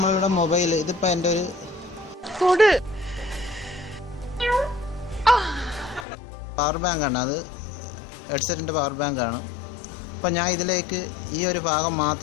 മൊബൈൽ. ഇതിപ്പോൾ എൻ്റെ ഒരു പവർ ബാങ്കാണ്. അത് ഹെഡ്സെറ്റിൻ്റെ പവർ ബാങ്കാണ്. അപ്പം ഞാൻ ഇതിലേക്ക് ഈ ഒരു ഭാഗം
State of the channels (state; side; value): drops out; right; at 6.1 s